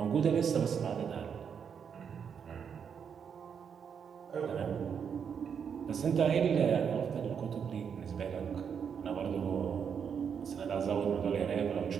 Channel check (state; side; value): quieter; left; 7.2 dB